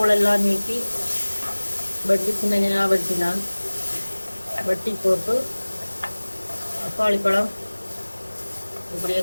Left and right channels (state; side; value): inverted; both; correlation -1.00